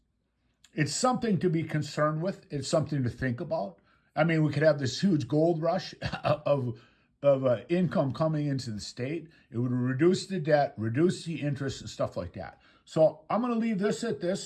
something to be concerned with. It's something to think about. I mean, we could have this huge gold rush of income coming into the state. It would reduce the debt, reduce the interest and stuff like that. So I'm going to leave this at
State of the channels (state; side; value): identical; both; correlation 1.00